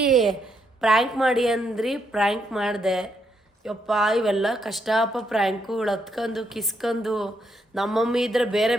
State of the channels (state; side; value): normal; both; correlation 0.77